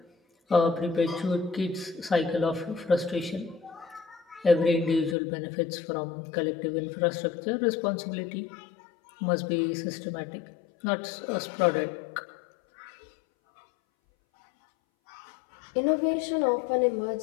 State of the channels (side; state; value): right; drops out; at 5.2 s